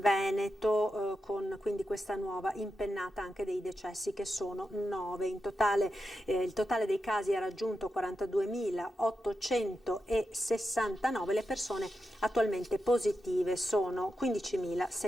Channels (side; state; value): both; normal; correlation 0.88